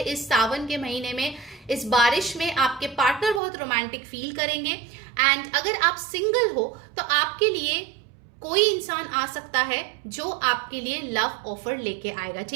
इस सावन के महीने में, इस बारिश में आपके पार्टनर बहुत रोमांटिक फील करेंगे. एंड अगर आप सिंगल हो तो आपके लिए कोई इंसान आ सकता है जो आपके लिए लव ऑफर लेके आएगा.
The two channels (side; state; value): left; drops out; at 3.4 s